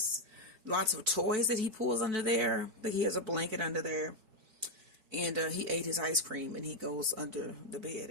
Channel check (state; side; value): late; left; 4.5 ms